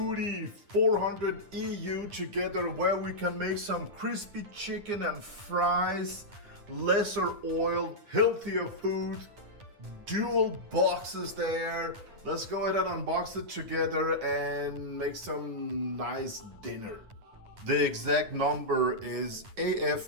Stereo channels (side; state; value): left; late; 9.6 ms